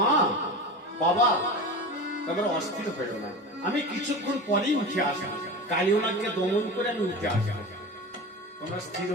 মা বাবা তোমরা অস্থির হয়ে না, আমি কিছুক্ষণ পরেই উঠে আসবো, কালিয়ানাথকে দমন করে আমি উঠে আসবো, তোমরা স্থির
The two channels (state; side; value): normal; both; correlation 0.30